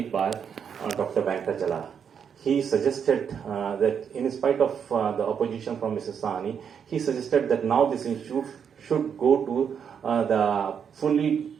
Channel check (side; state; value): left; quieter; 7.4 dB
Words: by Dr. Venkatachala. He suggested that in spite of the opposition from Mrs. Sahni, he suggested that now this institute should go to